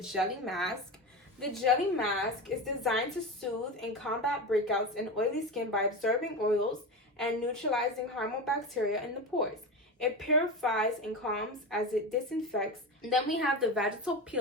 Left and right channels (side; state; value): both; normal; correlation 0.22